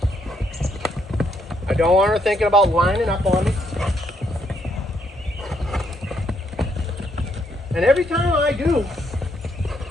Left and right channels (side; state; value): both; normal; correlation 0.74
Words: I don't want her thinking about lining up on me. And every time I do